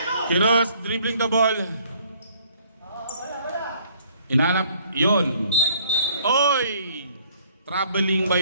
Kiros dribbling the ball. Inanap yun. Oy! Traveling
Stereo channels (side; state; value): both; inverted; correlation -0.60